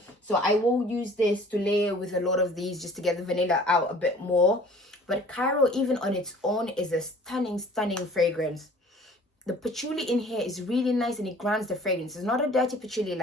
So I will use this to layer with a lot of these just to get the vanilla out a bit more. But Cairo, even on its own, is a stunning fragrance. The patchouli in here is really nice and it grounds the fragrance. It's not a dirty patchouli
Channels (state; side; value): normal; both; correlation 0.50